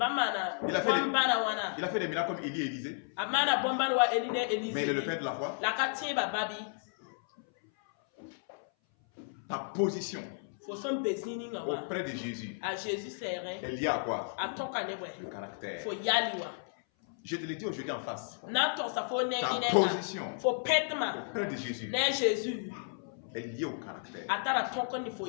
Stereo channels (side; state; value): right; silent; 56 dB below the other